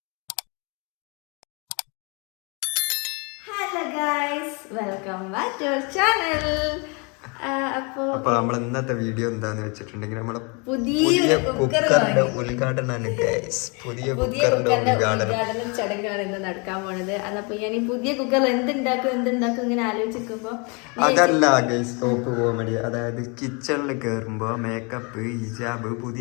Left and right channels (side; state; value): right; quieter; 32.1 dB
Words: Welcome back to our channel. അപ്പൊ നമ്മൾ ഇന്നത്തെ വീഡിയോ എന്താന്ന് വെച്ചിട്ടുണ്ടെങ്കിൽ നമ്മളെ പുതിയ കുക്കറിന്റെ ഉദ്ഘാടനമാണ്. പുതിയ കുക്കറിന്റെ ഉദ്ഘാടനം ചടങ്ങാണ് ഇന്ന് നടക്കാൻ പോണത്. അതപ്പോ ഞാൻ ഈ പുതിയ കുക്കറിൽ എന്തുണ്ടാക്കും ഇങ്ങനെ ആലോചിക്കുമ്പോ അതല്ല ഗൈസ് ടോപ്പ് കോമഡി. അതായത് കിച്ചണിൽ കയറുമ്പോ മേക്കപ്പ്, ഹിജാബ്,